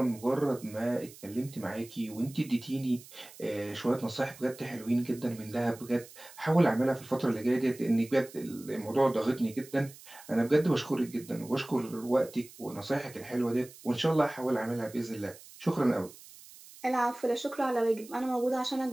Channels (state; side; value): noise; right; hiss, 19 dB below the sound